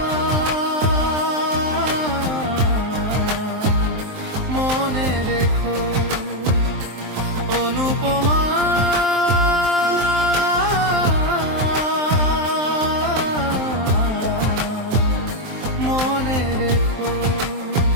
মনে রেখো, অনুপমা মনে রেখো।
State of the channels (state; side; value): late; left; 23 ms